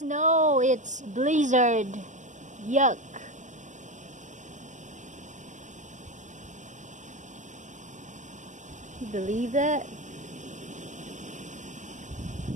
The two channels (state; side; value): late; left; 0.35 ms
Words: It's blizzard. Yuck. You believe that?